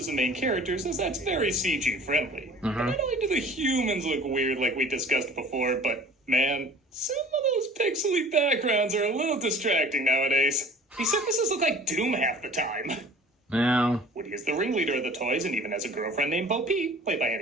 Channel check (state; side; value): normal; both; correlation 0.46